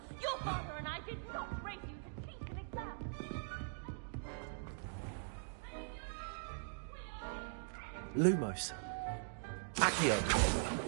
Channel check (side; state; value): left; silent; digital silence